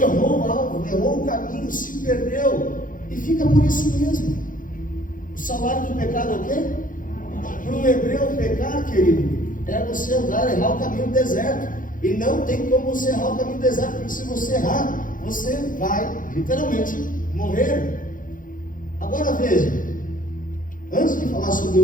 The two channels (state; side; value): late; right; 0.39 ms